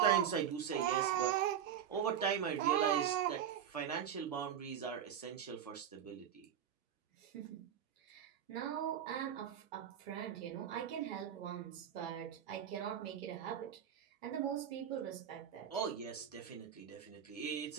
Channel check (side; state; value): left; quieter; 9.1 dB